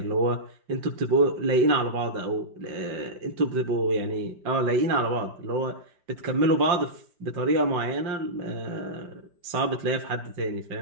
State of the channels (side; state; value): left; late; 5.6 ms